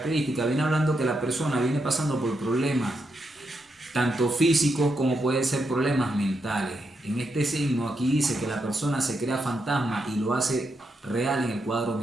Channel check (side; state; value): both; normal; correlation 0.82